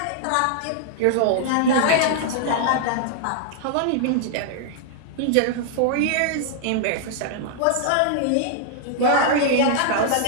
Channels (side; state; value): both; different; correlation -0.01